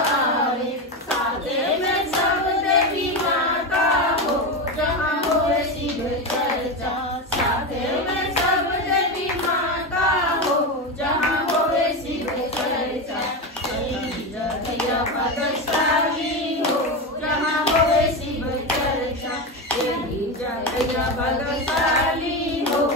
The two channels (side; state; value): both; normal; correlation 0.16